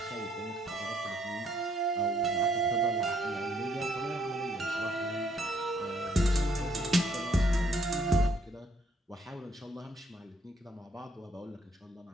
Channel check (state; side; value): normal; both; correlation 0.68